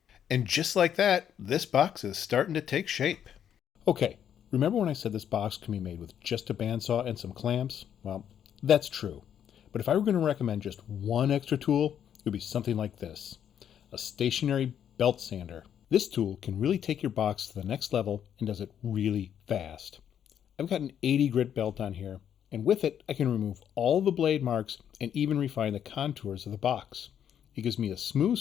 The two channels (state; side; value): quieter; right; 9.2 dB